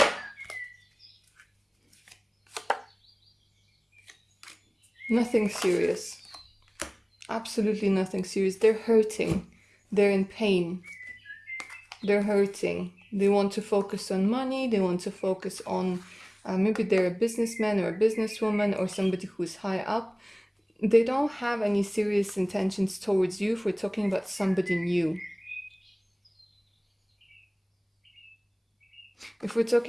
nothing serious. Absolutely nothing serious. They're hurting. They're in pain. They're hurting. They want to focus on money. They want to focus on maybe they're a businessman or a businesswoman or somebody who's high up. They don't have any serious intentions towards you if we're talking about somebody new. If we're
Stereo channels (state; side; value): identical; both; correlation 1.00